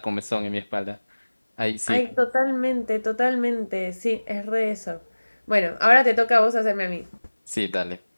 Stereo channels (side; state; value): both; inverted; correlation -1.00